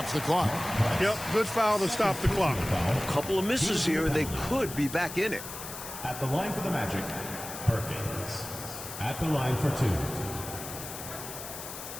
the clock. Yep, good foul to stop the clock. A couple of misses here, and they could be back in it. At the line for the Magic, Perkins. At the line for 2.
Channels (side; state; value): left; noise; hiss, 10 dB below the sound